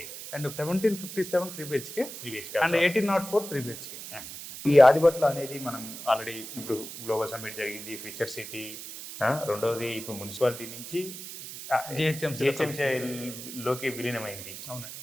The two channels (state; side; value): noise; right; hiss, 11 dB below the sound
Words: and 1757 3 BHK, and 1804 3 BHK. ఈ ఆదిబట్ల అనేది మనం ఆల్రెడీ ఇప్పుడు గ్లోబల్ సమ్మిట్ జరిగింది, ఫ్యూచర్ సిటీ, రెండోది ఇప్పుడు మున్సిపాలిటీ నుంచి జిహెచ్ఎంసీలోకి విలీనమైంది.